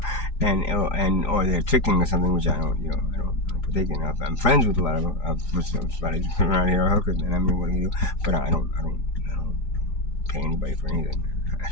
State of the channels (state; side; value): late; right; 4.8 ms